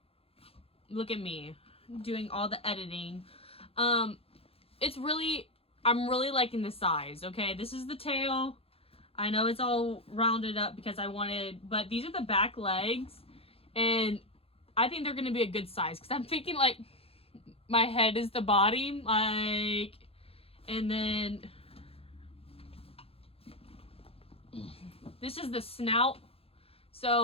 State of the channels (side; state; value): right; late; 0.28 ms